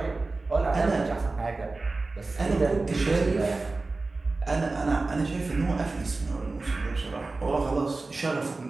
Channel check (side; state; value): left; quieter; 3.5 dB